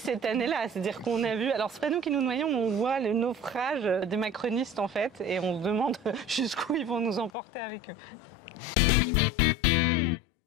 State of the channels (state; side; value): drops out; right; at 7.3 s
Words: année-là, c'est-à-dire qu'on a vu, alors c'est pas nous qui nous noyons, on voit le naufrage des macronistes en fait, et on se demande jusqu'où ils vont nous emporter avec eux.